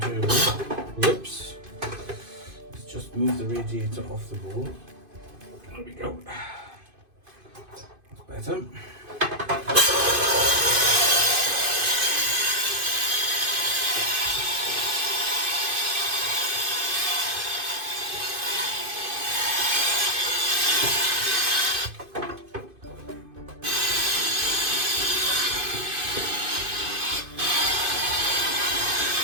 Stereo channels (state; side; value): late; left; 2.5 ms